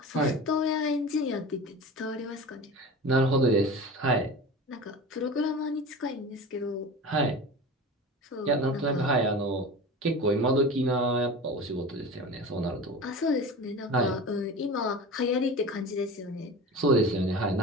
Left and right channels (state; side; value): normal; both; correlation 0.33